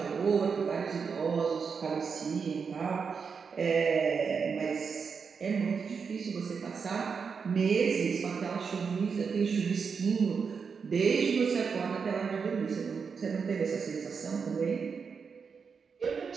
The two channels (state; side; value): quieter; left; 5.8 dB